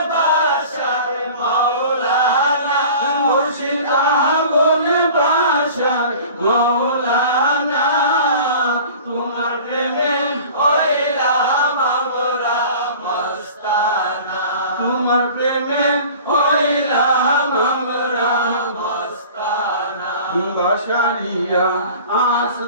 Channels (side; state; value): both; inverted; correlation -0.42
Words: বাসার মৌলানা, মুর্শিদা বলে বাসার মৌলানা, তোমার প্রেমে হইলাম আমরা মস্তানা, তোমার প্রেমে হইলাম আমরা মস্তানা। বাসারিয়া